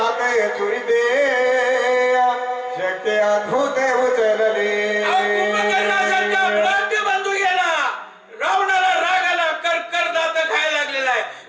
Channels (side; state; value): both; identical; correlation 1.00